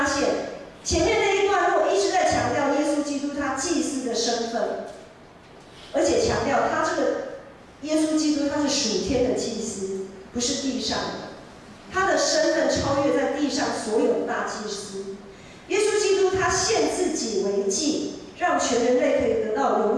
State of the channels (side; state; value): both; identical; correlation 1.00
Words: 现前面那一段落一直在强调耶稣基督他祭司的身份，而且强调他这个耶稣基督他是属天的祭司，不是地上的，他的身份超越在地上所有的大祭司。耶稣基督他献自己为祭，让全人类可以得到